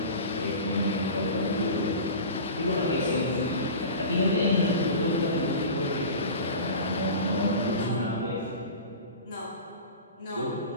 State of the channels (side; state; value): both; inverted; correlation -0.34